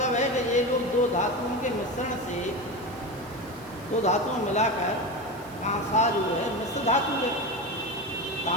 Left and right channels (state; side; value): noise; right; hiss, 22 dB below the sound